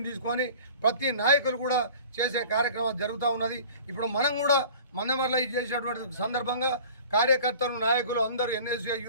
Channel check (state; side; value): inverted; both; correlation -0.44